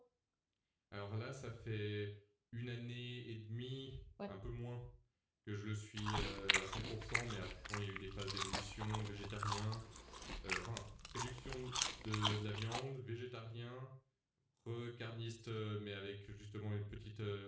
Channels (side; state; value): both; identical; correlation 1.00